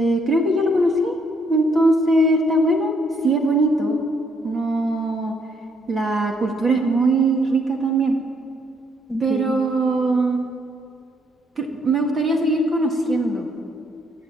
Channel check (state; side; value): normal; both; correlation 0.70